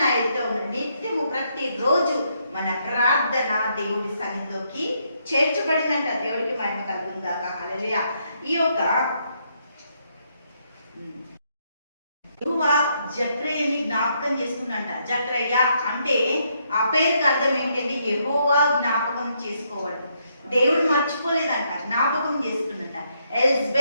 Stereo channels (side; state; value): both; inverted; correlation -0.75